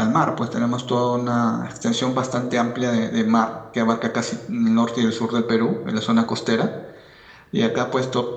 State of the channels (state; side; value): identical; both; correlation 1.00